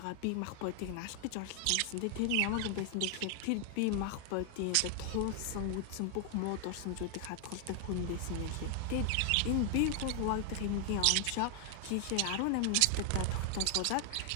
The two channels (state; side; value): different; both; correlation 0.00